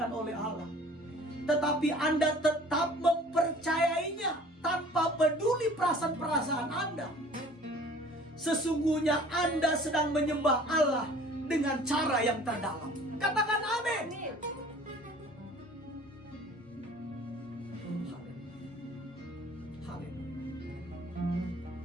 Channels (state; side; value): normal; both; correlation 0.49